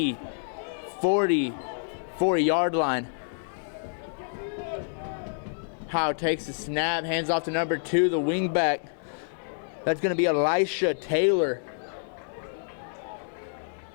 44-yard line. Howe takes the snap, hands off to number 2, the wingback. That's going to be Elisha Taylor.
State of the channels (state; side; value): silent; right; 59 dB below the other